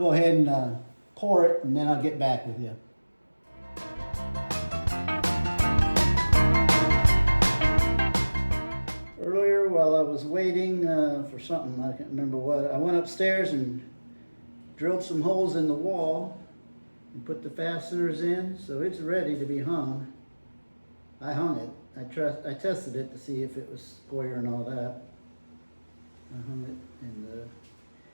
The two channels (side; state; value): both; inverted; correlation -1.00